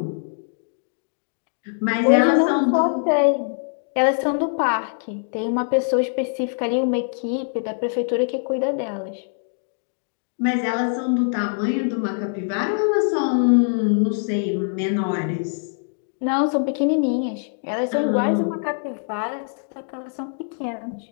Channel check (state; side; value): silent; right; digital silence